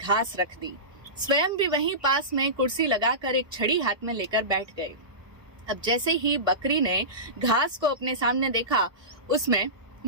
रख दी। स्वयं भी वहीं पास में कुर्सी लगाकर एक छड़ी हाथ में लेकर बैठ गए। अब जैसे ही बकरी ने घास को अपने सामने देखा, उसमें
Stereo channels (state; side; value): late; left; 1.3 ms